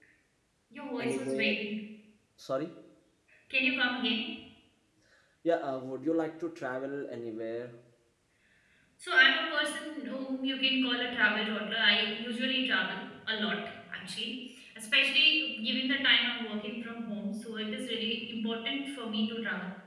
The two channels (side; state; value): both; identical; correlation 1.00